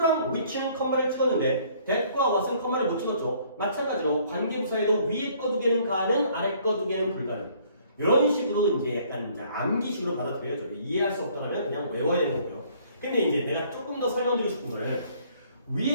which는 컴마를 찍었는데 that과 what은 컴마를 못 찍었죠. 마찬가지로 관계부사에도 위에 거 두 개는 가능, 아래 거 두 개는 불가능. 이런 식으로 이제 약간 이제 암기식으로 받아들여야죠. 이해할 수 없다면 그냥 외워야 되는 거고요. 근데 이제 내가 조금 더 설명드리고 싶은 거는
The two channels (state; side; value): inverted; both; correlation -0.60